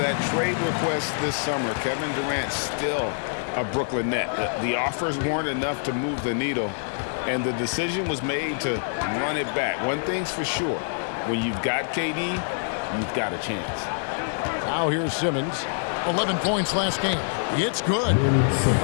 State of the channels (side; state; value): right; silent; digital silence